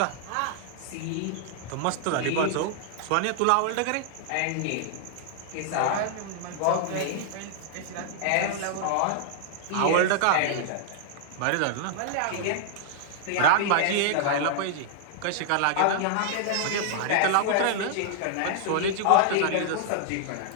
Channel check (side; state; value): both; different; correlation -0.01